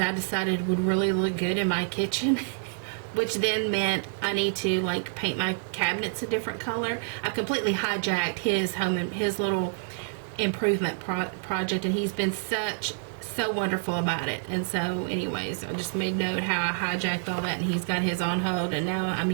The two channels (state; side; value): silent; left; digital silence